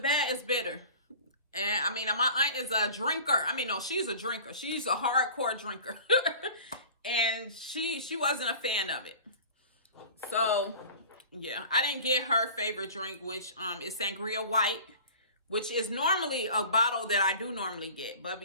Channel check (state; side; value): inverted; both; correlation -0.41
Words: is bitter. And I mean, my aunt is a drinker. I mean, no, she's a drinker. She's a hardcore drinker. And she wasn't a fan of it. So yeah, I didn't get her favorite drink, which is Sangria White, which is normally a bottle that I do normally get. But